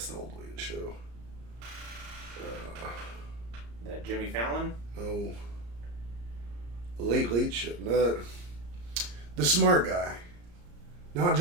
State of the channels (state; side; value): late; left; 34 ms